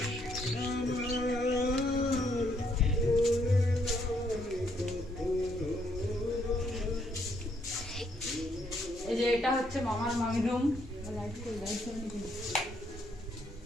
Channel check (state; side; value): normal; both; correlation 0.72